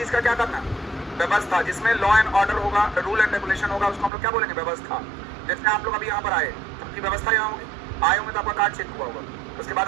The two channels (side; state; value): left; drops out; at 4.1 s